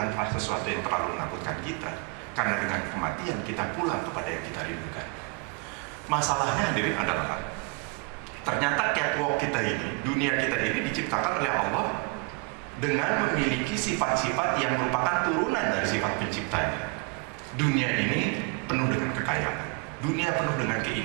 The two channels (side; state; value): left; quieter; 29.3 dB